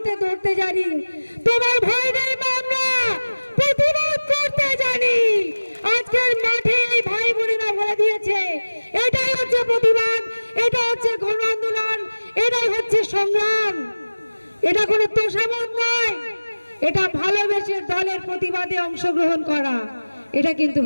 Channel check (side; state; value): both; inverted; correlation -1.00